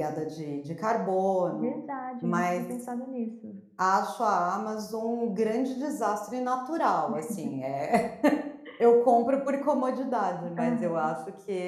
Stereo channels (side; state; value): both; identical; correlation 1.00